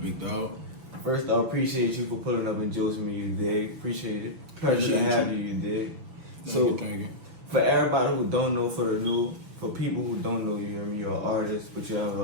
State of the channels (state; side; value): late; left; 6.6 ms